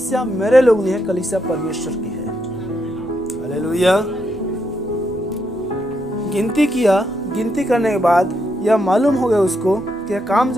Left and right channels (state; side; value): normal; both; correlation 0.79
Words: मेरे लोग नहीं है, कलीसिया परमेश्वर की है। हालेलुया। गिनती किया, गिनती करने के बाद यह मालूम हो गया उसको कि यह काम